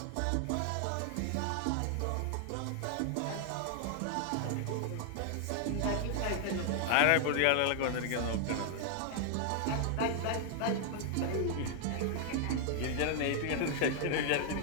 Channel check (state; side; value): different; both; correlation 0.00